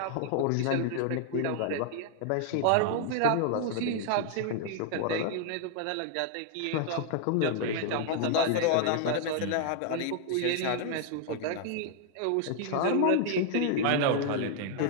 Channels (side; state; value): both; different; correlation -0.01